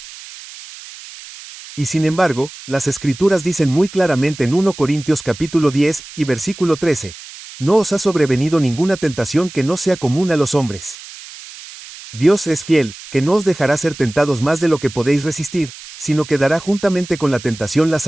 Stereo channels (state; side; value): noise; right; hiss, 16 dB below the sound